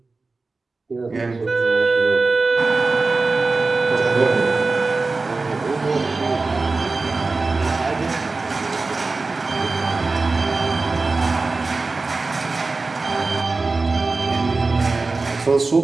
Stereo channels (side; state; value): left; quieter; 3.7 dB